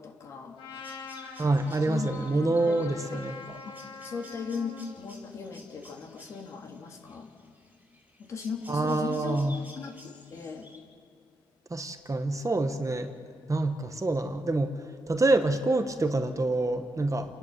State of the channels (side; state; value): both; normal; correlation 0.84